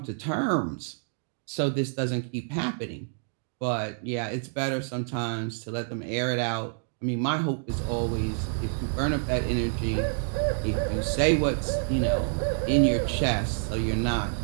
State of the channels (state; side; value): silent; left; digital silence